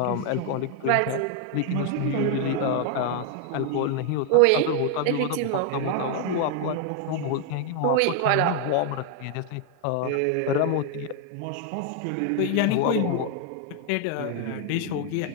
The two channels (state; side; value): different; both; correlation 0.01